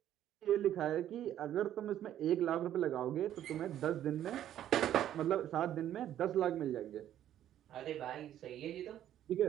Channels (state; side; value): quieter; left; 11.5 dB